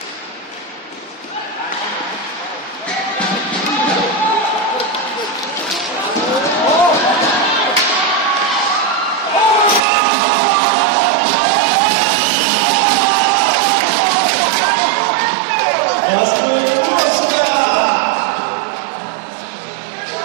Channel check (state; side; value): drops out; left; at 9.8 s